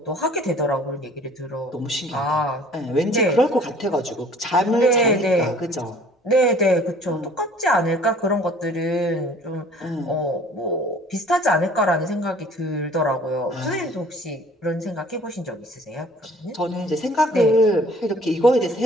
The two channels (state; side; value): normal; both; correlation 0.52